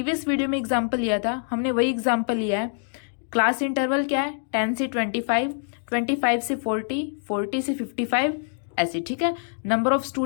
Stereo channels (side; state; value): right; silent; 62 dB below the other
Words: वीडियो में एग्जाम्पल लिया था, हमने वही एग्जाम्पल लिया है। क्लास इंटरवल क्या है, 10 से 25, 25 से 40, 40 से 55, ऐसे, ठीक है। नंबर ऑफ